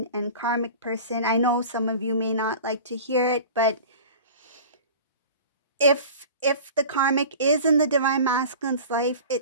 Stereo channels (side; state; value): both; inverted; correlation -0.39